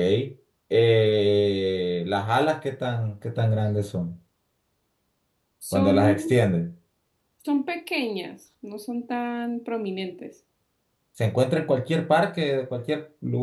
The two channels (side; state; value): both; identical; correlation 1.00